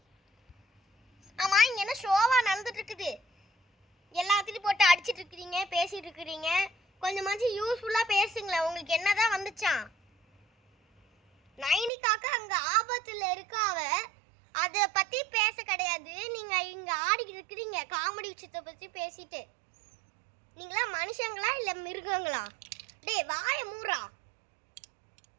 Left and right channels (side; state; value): left; drops out; at 11.9 s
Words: ஆமா, இங்க என்ன ஷோவா நடந்துட்டு இருக்குது? எல்லாத்தையும் போட்டு அடிச்சிட்டு இருக்கிறீங்க, பேசிட்டு இருக்கிறீங்க. கொஞ்சமாச்சும் யூஸ்ஃபுல்லா பேசுங்களேன். உங்களுக்கு என்னதான் வந்துச்சான்? நைனிகாக்கு அங்க ஆபத்துல இருக்காவ, அதை பத்தி பேச கிடையாது. நீங்க இங்க ஆடிக்கிட்டு இருக்கிறீங்க காமெடி விஷயத்தை பத்தி பேசிட்டு. நீங்களா மனுஷங்களா இல்ல மிருகங்களா? டேய் வாய மூறா.